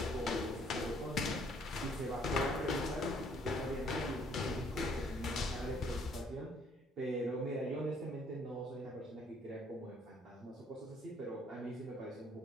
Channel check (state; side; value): normal; both; correlation 0.63